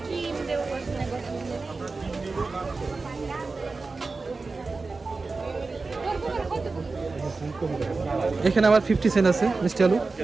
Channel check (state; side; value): quieter; left; 3.9 dB